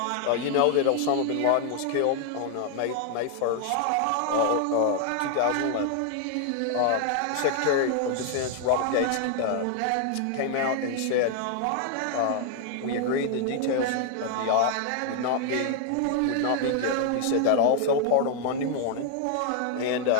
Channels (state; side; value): different; both; correlation 0.00